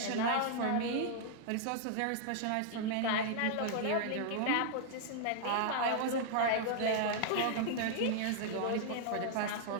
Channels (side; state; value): both; different; correlation -0.01